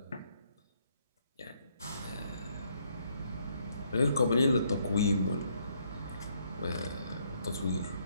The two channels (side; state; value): both; inverted; correlation -0.70